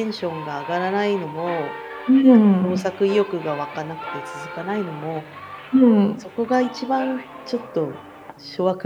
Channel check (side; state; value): both; identical; correlation 1.00